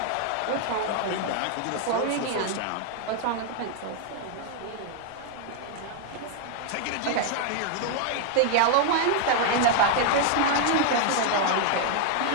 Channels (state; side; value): different; both; correlation 0.00